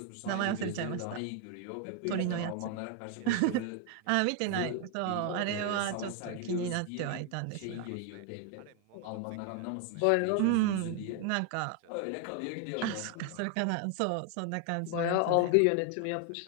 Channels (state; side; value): different; both; correlation 0.00